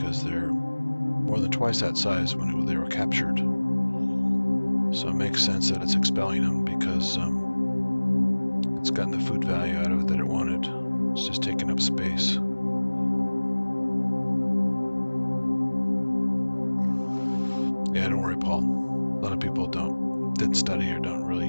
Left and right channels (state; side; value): inverted; both; correlation -1.00